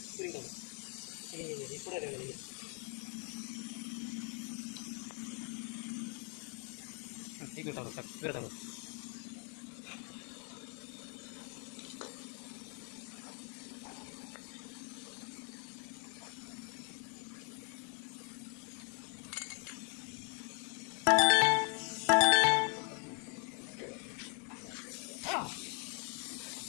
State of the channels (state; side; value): quieter; right; 39.1 dB